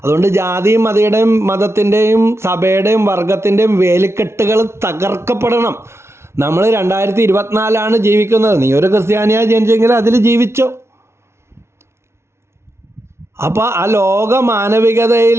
അതുകൊണ്ട് ജാതിയും മതത്തിൻ്റെയും സഭയുടെയും വർഗത്തിൻ്റെയും വേലിക്കെട്ടുകൾ തകർക്കപ്പെടണം. നമ്മൾ 2024 ജീവിക്കുന്നത്. നീ ഒരു ക്രിസ്ത്യാനിയായി ജനിച്ചെങ്കിൽ അതിൽ ജീവിച്ചോ. അപ്പോൾ ആ ലോക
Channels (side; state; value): left; late; 0.13 ms